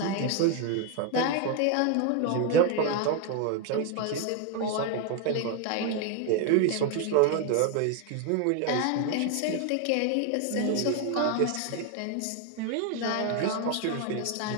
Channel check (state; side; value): different; both; correlation 0.01